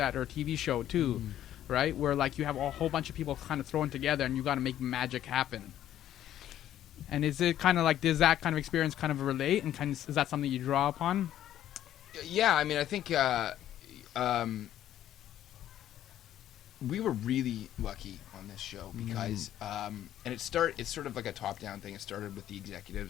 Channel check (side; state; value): right; quieter; 11.8 dB